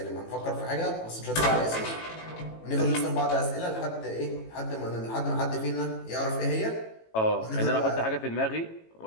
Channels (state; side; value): late; right; 18 ms